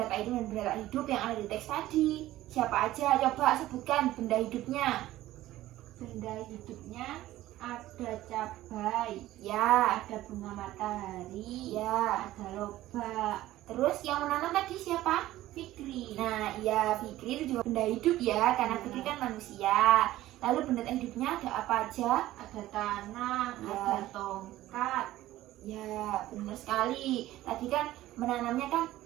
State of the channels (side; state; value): left; quieter; 15.3 dB